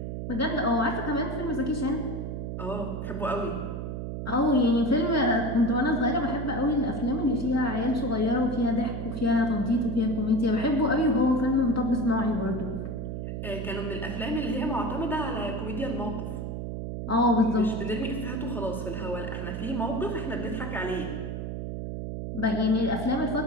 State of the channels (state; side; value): noise; right; hum, 5 dB below the sound